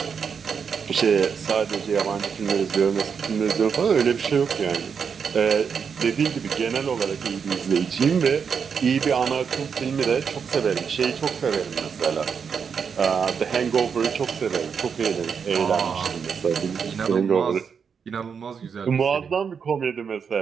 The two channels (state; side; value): quieter; left; 6.5 dB